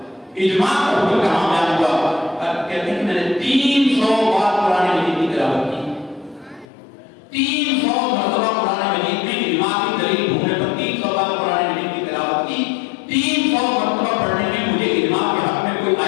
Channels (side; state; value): right; drops out; at 6.7 s